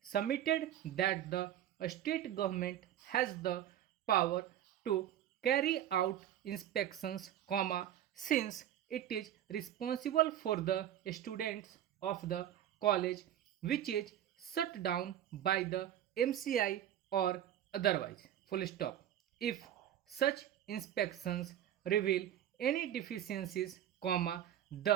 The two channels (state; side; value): quieter; left; 11.4 dB